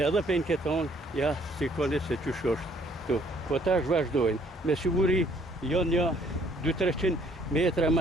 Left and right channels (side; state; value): both; normal; correlation 0.62